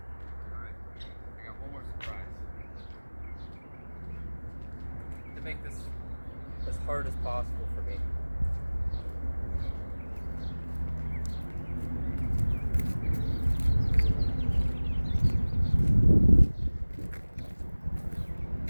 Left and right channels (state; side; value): inverted; both; correlation -1.00